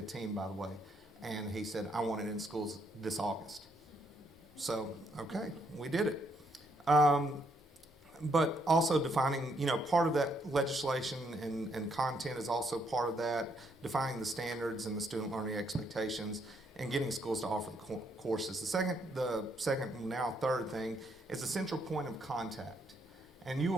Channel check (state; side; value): normal; both; correlation 0.73